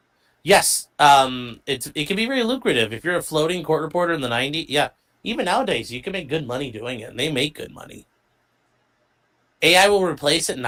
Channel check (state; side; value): identical; both; correlation 1.00